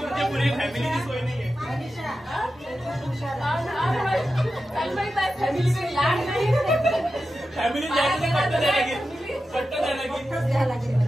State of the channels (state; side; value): normal; both; correlation 0.91